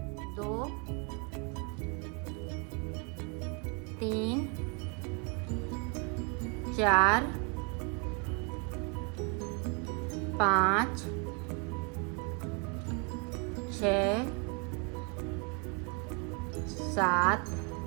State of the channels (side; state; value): left; quieter; 34.8 dB